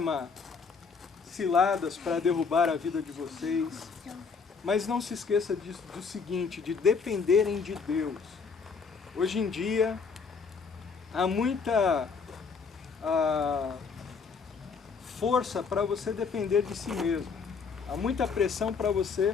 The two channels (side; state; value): right; quieter; 5.3 dB